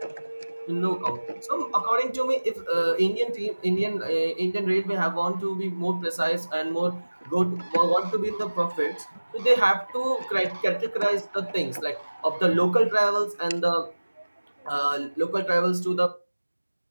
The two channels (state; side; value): inverted; both; correlation -1.00